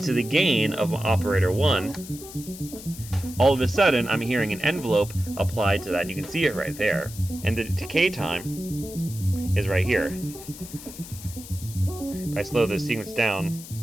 the gain of operator 1, all of a sudden I'm hearing an envelope applied to that, and you can see it right there. And the decay time is right here. If I slow this sequence down,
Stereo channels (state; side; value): noise; left; hiss, 15 dB below the sound